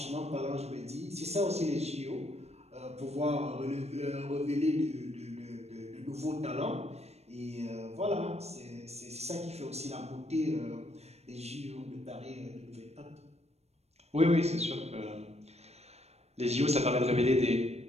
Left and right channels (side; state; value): left; late; 0.31 ms